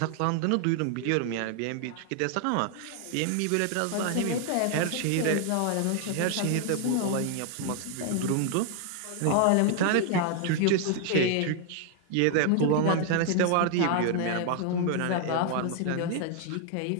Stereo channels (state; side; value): different; both; correlation 0.00